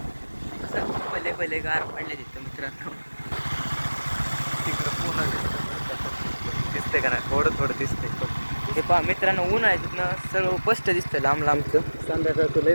भले भले गार पडले तिथं मित्रांनो. तिकडं पूर्ण दिसते का नाही? थोडं थोडं दिसतंय. हे पहा मित्रांनो, ऊन आहे तिथनं सर्व स्पष्ट दिसतं लांब लांबचं. संध्याकाळचं लय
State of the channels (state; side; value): inverted; both; correlation -1.00